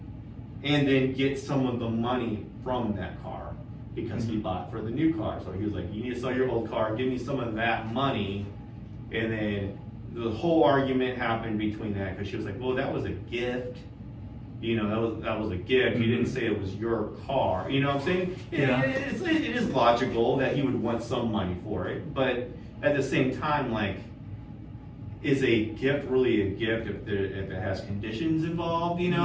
and then get some of the money from that car because he bought for the new car. So he was like, you need to sell your old car, give me some of that money. And then the whole argument happened between that because she was like, well, that was a gift. You know, that was a gift. You didn't say it was your car. You know what I'm saying? Yeah. It is logical that he would want some money for it. But at the same time, like, is a gift really a gift if it has conditions involved? You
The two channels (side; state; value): both; identical; correlation 1.00